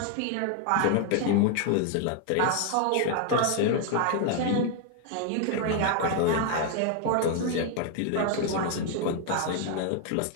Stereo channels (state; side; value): different; both; correlation 0.00